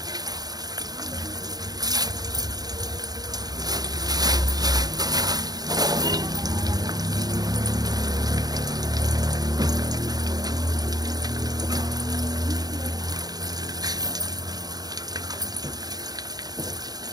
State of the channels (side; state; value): left; late; 0.19 ms